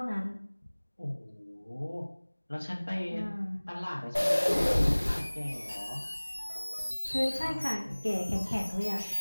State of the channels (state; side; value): inverted; both; correlation -1.00